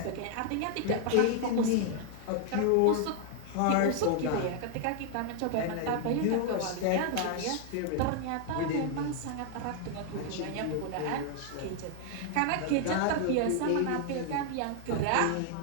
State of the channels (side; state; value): both; different; correlation 0.00